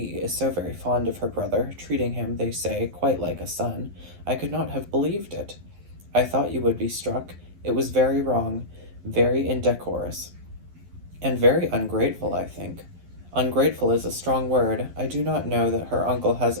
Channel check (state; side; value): late; left; 11 ms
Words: is so very fond of her brother, treating him, they say, quite like a son. I could not have believed it. I thought you would be struck. It was very wrong, very indecorous, and very ungrateful, I think." "Ungrateful is a strong word. I do not know that her uncle has